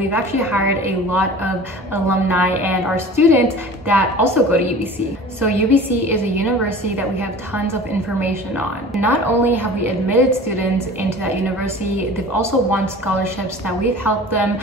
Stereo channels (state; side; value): normal; both; correlation 0.41